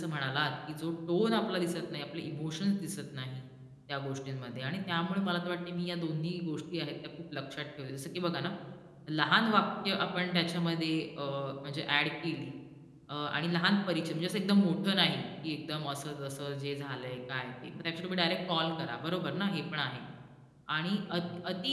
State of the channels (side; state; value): both; identical; correlation 1.00